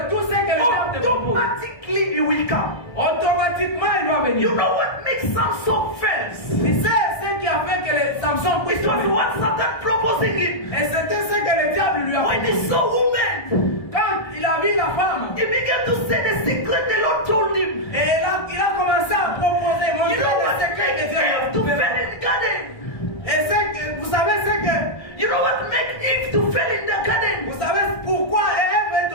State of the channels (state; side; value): late; right; 1.3 ms